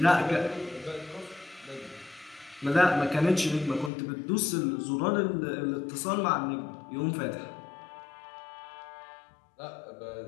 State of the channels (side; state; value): right; drops out; at 3.9 s